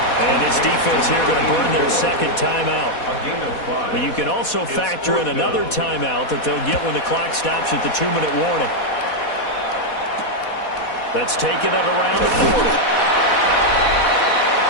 And his defense here going to burn their 2nd timeout. But you can also factor in another timeout that they'll get when the clock stops at the 2-minute warning. Let's take it at around the 40.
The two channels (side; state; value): right; late; 4.1 ms